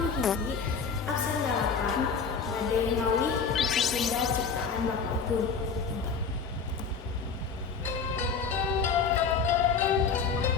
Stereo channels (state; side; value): quieter; right; 5.5 dB